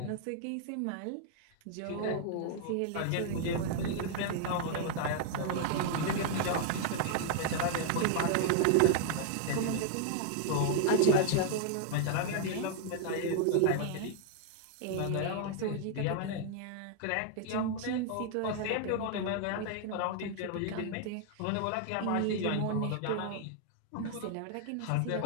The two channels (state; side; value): different; both; correlation 0.00